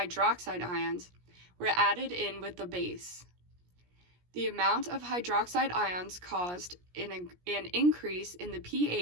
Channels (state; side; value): late; left; 17 ms